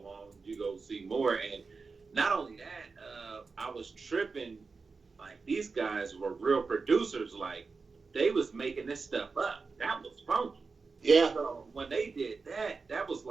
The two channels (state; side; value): quieter; left; 4.5 dB